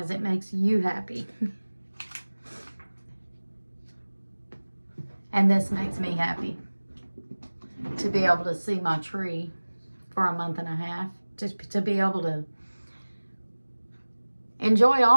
as it makes you happy. And this makes me happy. To be able to see my tree for a month and a half. To be able to enjoy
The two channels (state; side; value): inverted; both; correlation -1.00